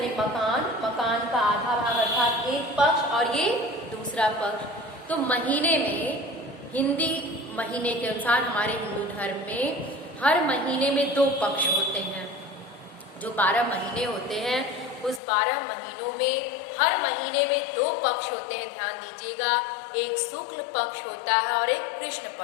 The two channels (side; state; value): right; drops out; at 15.2 s